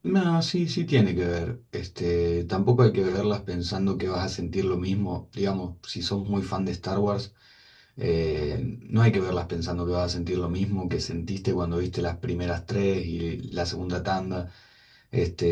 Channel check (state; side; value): identical; both; correlation 1.00